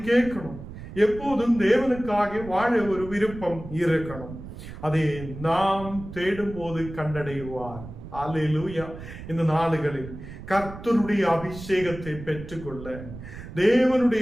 கேட்கணும். எப்போதும் தேவனுக்காக வாழ ஒரு விருப்பம் இருக்கணும். அதை நாம் தேடும் போது கண்டடைவார். அல்லேலூயா. இந்த நாளுகளில் கர்த்தருடைய அபிஷேகத்தை பெற்றுக்கொள்ள,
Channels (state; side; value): noise; right; rumble, 13 dB below the sound